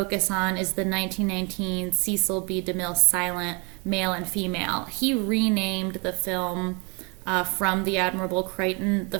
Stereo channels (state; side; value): quieter; left; 31.7 dB